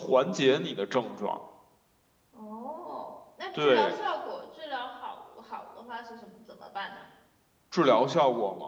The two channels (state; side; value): identical; both; correlation 1.00